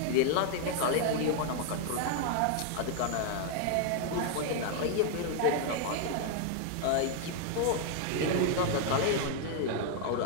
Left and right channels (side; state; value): both; different; correlation 0.00